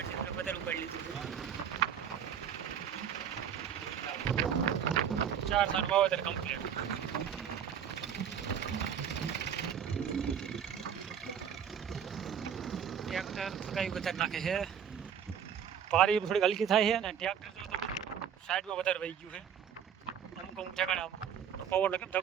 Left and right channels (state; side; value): quieter; left; 8.4 dB